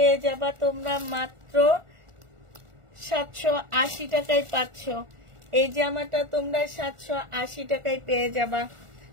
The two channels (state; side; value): late; left; 1.4 ms